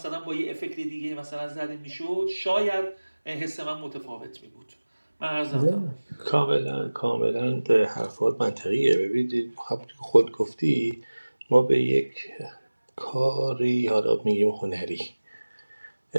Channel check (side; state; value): both; inverted; correlation -1.00